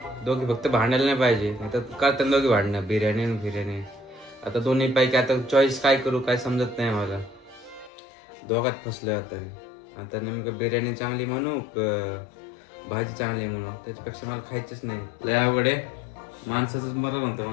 दोघे फक्त भांडायला नाही पाहिजे नाही तर करताना दोघे भांडणं बिर्याणी आणि बिर्याणी आता दोन्ही पैकी आता चॉईस काय करू काय समजत नाही मला दोघात फसलोय आता मी आता नेमकं बिर्याणी चांगली म्हणू भाजी चांगली म्हणू त्याच्यापेक्षा मला खायचंच नाही लय अवघड आहे माणसाचंच मरण होतं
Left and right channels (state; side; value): drops out; right; at 7.9 s